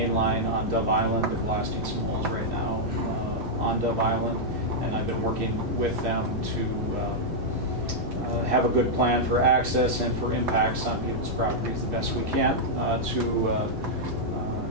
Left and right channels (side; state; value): both; normal; correlation -0.05